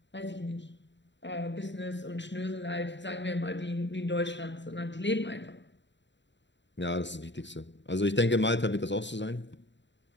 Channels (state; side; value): late; right; 0.52 ms